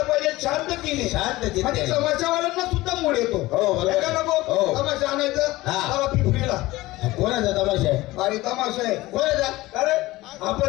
पाहिजे शांततेने शांत चित्ते. म्हणजे तमाशावाल्यांना सुद्धा मूड येतो हो, बरोबर. हे का नको हो. तमाशा आणायचं हा. चला पिपरीला कोणाचा तमाशा आहे. भारी तमाशा आहे कोणाचा. अरे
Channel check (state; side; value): quieter; right; 18.8 dB